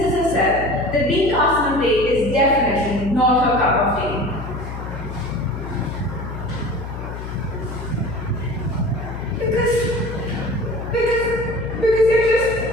herself that being cast in a play is definitely not her cup of tea. Because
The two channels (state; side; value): noise; left; hum, 8 dB below the sound